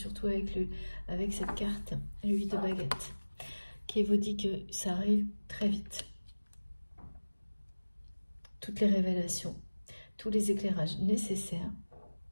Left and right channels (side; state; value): both; inverted; correlation -1.00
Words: avec cette carte, le 8 de baguette, qui vous dit que ça arrive très vite. Toutes les révélations, tous les éclairages nécessaires.